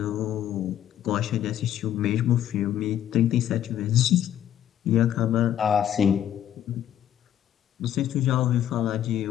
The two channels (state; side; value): quieter; right; 10.9 dB